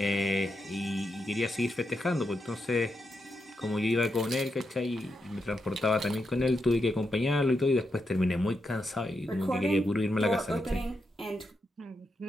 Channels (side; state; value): both; normal; correlation 0.84